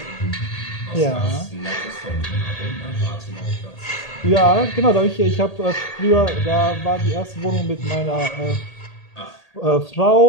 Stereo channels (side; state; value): right; late; 1.8 ms